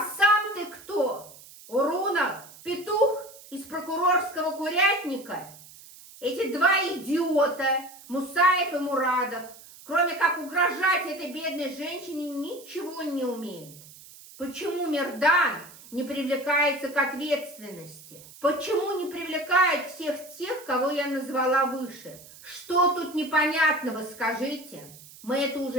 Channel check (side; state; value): right; noise; hiss, 20 dB below the sound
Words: сам ты кто? Урунов? Петух из прокурорского курятника? Эти два идиота, Мусаев и Мурадов, кроме как угрожать этой бедной женщине, ничего не умеют. Почему Мердан не привлекается к ответственности? Почему не привлекает всех тех, кого я назвала выше? Что тут непонятного, скажите? Мы это